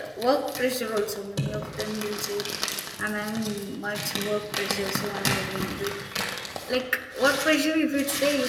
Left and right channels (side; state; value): both; identical; correlation 1.00